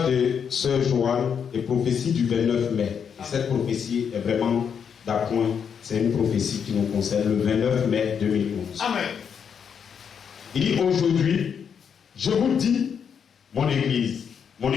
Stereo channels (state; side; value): quieter; right; 7.3 dB